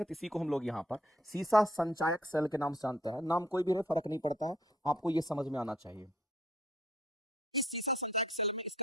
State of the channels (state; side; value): normal; both; correlation 0.64